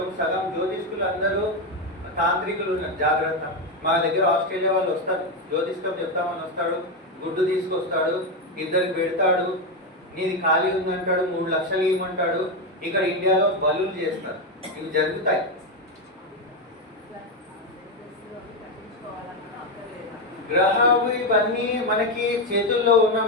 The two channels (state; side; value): normal; both; correlation 0.08